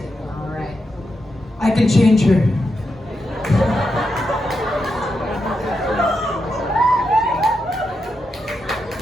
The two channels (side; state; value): both; normal; correlation 0.85